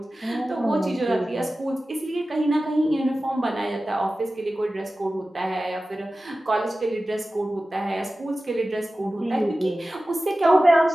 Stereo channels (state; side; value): normal; both; correlation 0.95